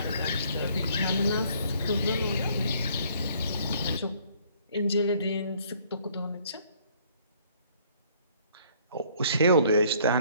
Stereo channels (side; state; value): both; inverted; correlation -0.61